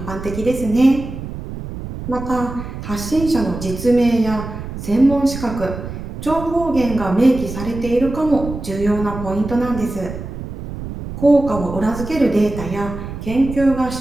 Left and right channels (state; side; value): noise; right; rumble, 9 dB below the sound